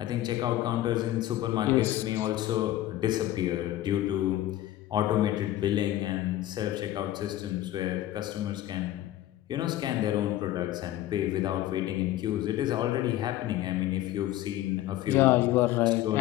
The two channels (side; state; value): right; quieter; 14.2 dB